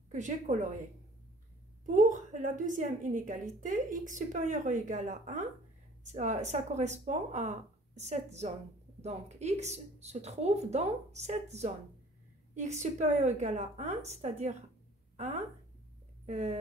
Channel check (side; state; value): both; normal; correlation 0.52